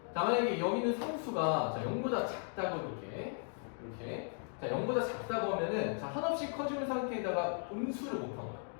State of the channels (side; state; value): right; silent; 53 dB below the other